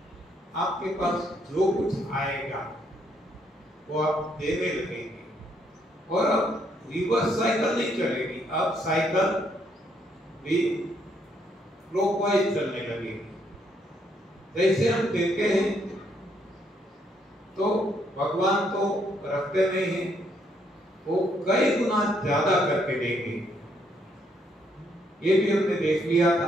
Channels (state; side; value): normal; both; correlation 0.72